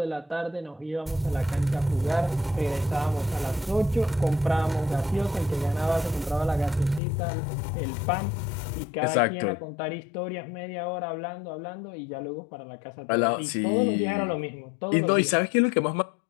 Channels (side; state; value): right; drops out; at 7.0 s